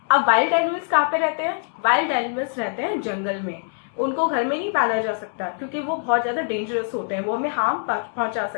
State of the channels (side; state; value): right; silent; 63 dB below the other